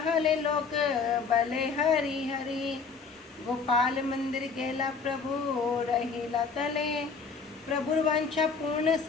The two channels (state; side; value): quieter; right; 5.0 dB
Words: लोक बले हरि हरि। गोपाल मंदिर गेला प्रभु रहिला तले, प्रभु वांछा पूर्ण